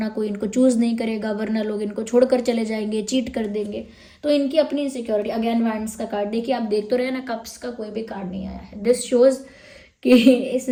कोई इनको चूज नहीं करेगा, वरना लोग इनको छोड़कर चले जाएंगे, चीट कर देंगे। तो इनकी अपनी इनसिक्योरिटी। अगेन वैंड्स का कार्ड देखिए, आप देख तो रहे हैं ना, कप्स का कोई भी कार्ड नहीं आया है। दिस शोज कि इस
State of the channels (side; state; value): both; identical; correlation 1.00